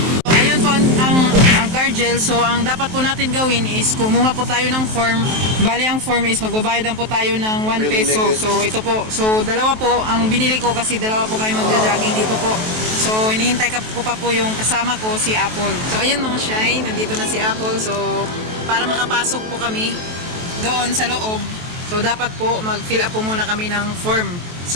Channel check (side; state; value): left; late; 23 ms